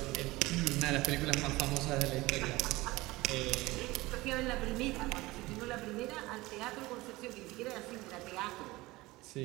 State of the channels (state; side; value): quieter; left; 20.3 dB